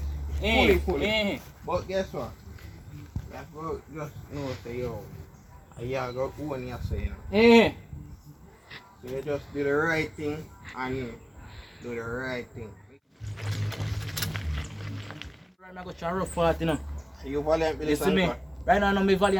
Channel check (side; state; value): both; identical; correlation 1.00